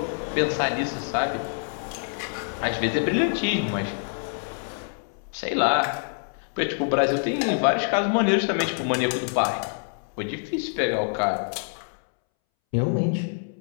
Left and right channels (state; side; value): silent; right; 61 dB below the other